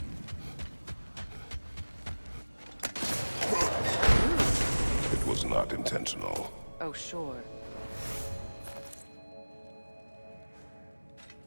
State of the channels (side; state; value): both; inverted; correlation -1.00